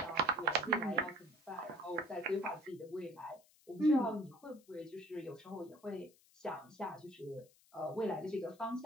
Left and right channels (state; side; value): noise; left; hiss, 28 dB below the sound